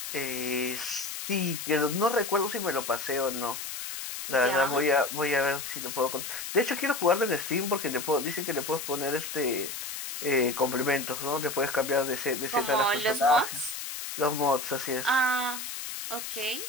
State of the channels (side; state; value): left; noise; hiss, 7 dB below the sound